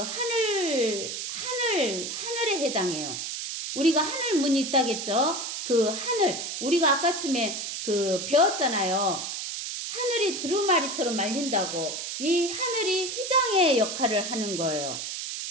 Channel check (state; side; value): noise; right; hiss, 5 dB below the sound